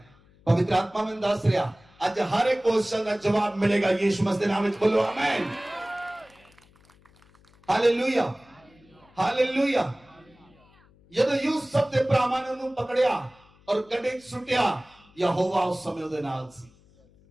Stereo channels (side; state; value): left; noise; hum, 29 dB below the sound